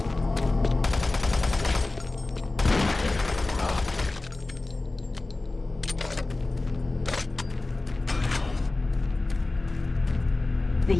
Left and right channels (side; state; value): right; quieter; 3.1 dB